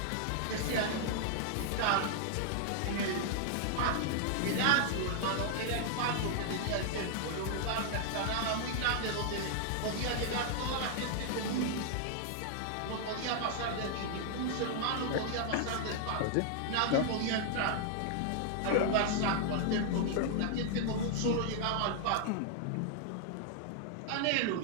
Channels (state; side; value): different; both; correlation 0.00